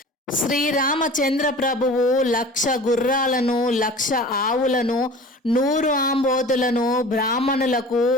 శ్రీరామచంద్ర ప్రభువు 1,00,000 గుర్రాలను, 1,00,000 ఆవులను, 100 ఆంబోతులను బ్రాహ్మణులకు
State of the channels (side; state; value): both; normal; correlation 0.41